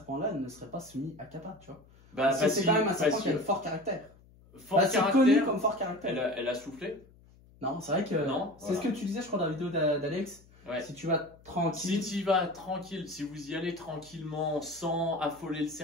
ne seraient pas soumis à Kappa, tu vois? Bah, c'est quand même un serpent qui a le fort caractère. C'est connu comme fort caractère. Elle a soufflé? Non, c'est vrai que. Non. C'est ce que tu disais, je crois, dans la vidéo d'Alex. Ouais. Si tu vas tranquille. Si tu vas tranquille, si vous y allez tranquillement, sans affoler le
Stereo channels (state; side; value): noise; left; hum, 26 dB below the sound